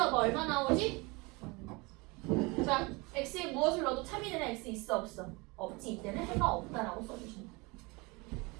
얼마 나오지? 자, x에 무엇을 넣어도 참이 되는 x 있어 없어? 없지. 이때는 해가 없다라고 써주신다.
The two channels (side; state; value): left; quieter; 26.1 dB